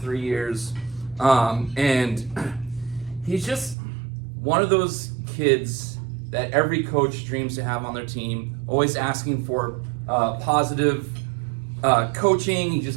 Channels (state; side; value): drops out; left; at 3.8 s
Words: years. And he's just one of those kids that every coach dreams to have on their team, always asking for positive coaching.